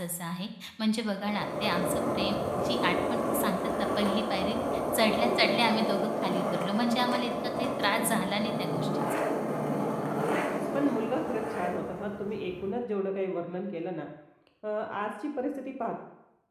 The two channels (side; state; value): both; identical; correlation 1.00